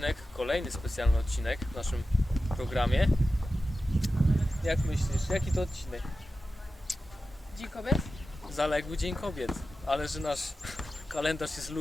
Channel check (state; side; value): normal; both; correlation 0.93